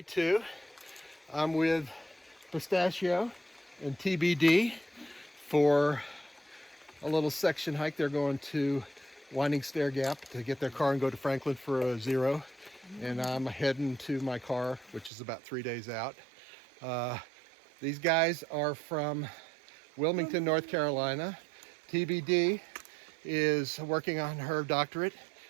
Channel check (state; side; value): drops out; left; at 15.1 s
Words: 2. I'm with Pistachio and TBD for a little section hike. They're going to Winding Stair Gap to get their car and go to Franklin for a 0. And I'm heading to my car, which is about 3 days out. These guys are from Wilmington, North Carolina. TBD is working on her doctorate